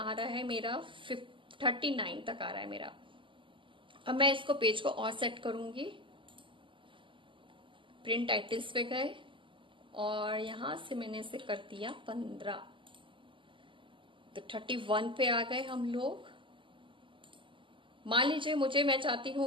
रहा है मेरा 39 तक आ रहा है मेरा। अब मैं इसको पेज को और सेट करूंगी। प्रिंट टाइटल्स पे गए और यहां से मैंने इसे कर दिया 15, तो 31 पे आ गए हम लोग। मान लीजिए मैं चाहती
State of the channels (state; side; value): late; left; 0.25 ms